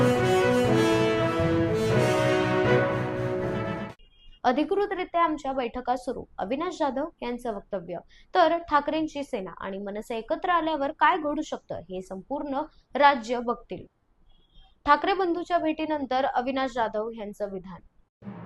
अधिकृतरित्या आमच्या बैठका सुरू, अविनाश जाधव यांचं वक्तव्य. तर ठाकरेंची सेना आणि मनसे एकत्र आल्यावर काय घडू शकतं हे संपूर्ण राज्य बघतील. ठाकरे बंधूच्या भेटीनंतर अविनाश जाधव यांचं विधान.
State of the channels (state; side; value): identical; both; correlation 1.00